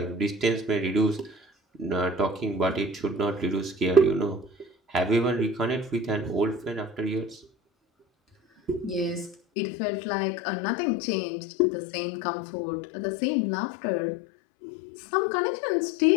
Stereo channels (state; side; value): drops out; right; at 9.3 s